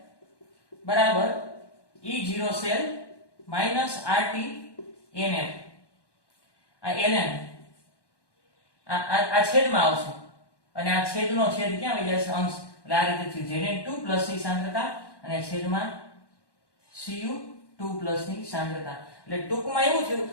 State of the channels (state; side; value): late; right; 1.1 ms